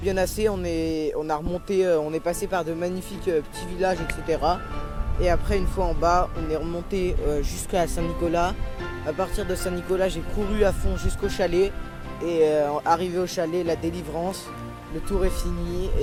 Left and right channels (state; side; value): identical; both; correlation 1.00